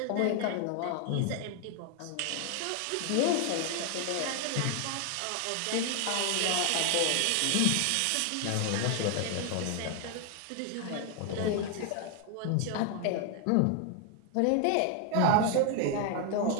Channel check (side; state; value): both; different; correlation 0.00